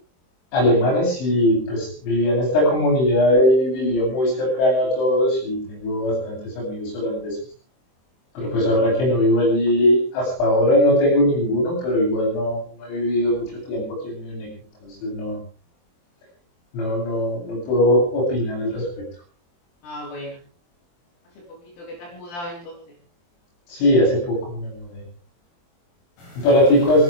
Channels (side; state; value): right; late; 23 ms